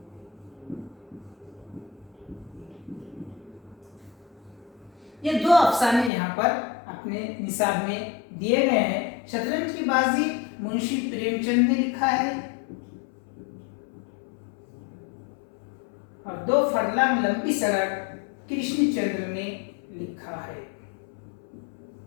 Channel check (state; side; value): drops out; right; at 6.1 s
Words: ये 2 अफसाने यहाँ पर अपने निसाब में दिए गए हैं। शतरंज की बाजी मुंशी प्रेमचंद ने लिखा है और 2 फरलांग लंबी सड़क कृष्णचंद्र ने लिखा है।